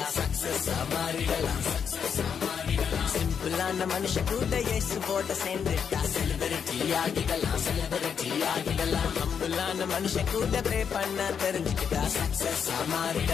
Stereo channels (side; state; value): right; quieter; 7.2 dB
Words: சக்சஸ் மாறிடலாம், சக்சஸ் மாறிடலாம். சிம்பிளான மனுஷன் கூட இயேசுவோட சேர்ந்துட்டா செலிபிரிட்டி ஆகிடலாம், செலிபிரிட்டி ஆகிடலாம். ஹம்பிளான மனுஷன் கூட ப்ரே பண்ண தெரிஞ்சுக்கிட்டா சக்சஸ்